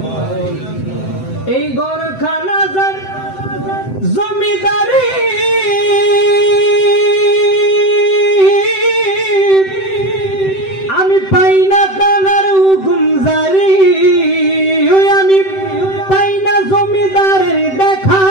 এই ঘরখানা যার জমিদারি আমি পাই না তার হুকুম জারি, আমি পাই না জমিদারের দেখা,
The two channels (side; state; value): right; late; 7.8 ms